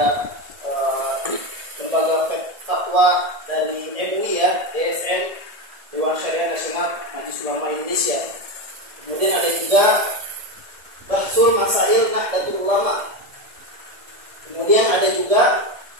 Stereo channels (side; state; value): left; late; 1.7 ms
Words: lembaga fatwa dari MUI ya, DSN, Dewan Syariah Nasional Majelis Ulama Indonesia. Kemudian ada juga Bahsul Masail Nahdlatul Ulama. Kemudian ada juga